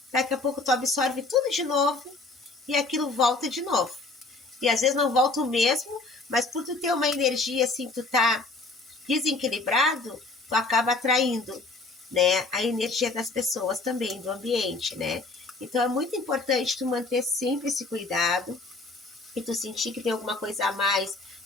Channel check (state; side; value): quieter; right; 3.4 dB